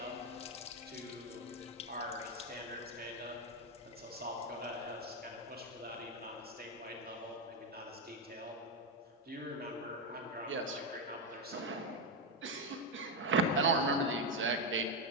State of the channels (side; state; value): both; normal; correlation 0.06